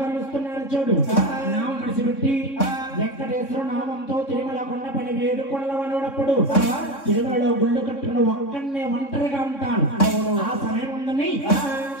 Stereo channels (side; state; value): right; late; 3.6 ms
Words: కలుస్తున్నాడు చూడు నామం విడిచిపెట్టి వెంకటేశ్వర నామంతో తిరుమల కొండపని వేడుకొండల వనప్పుడు తిరుమలలో గుళ్ళు కట్టుకుని ఒక్కడనే ఒంటరిగా ఉంటాను ఆ సమయం ఉందని